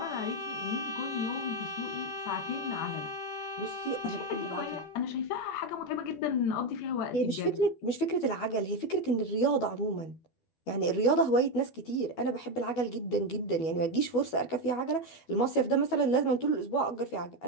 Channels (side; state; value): right; late; 12 ms